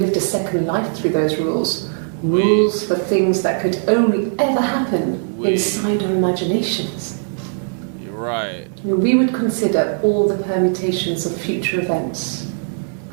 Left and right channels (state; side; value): silent; left; 65 dB below the other